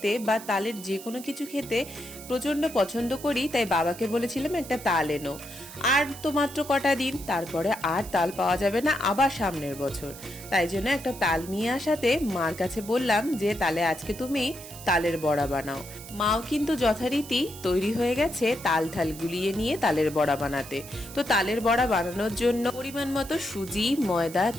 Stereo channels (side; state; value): right; noise; hiss, 15 dB below the sound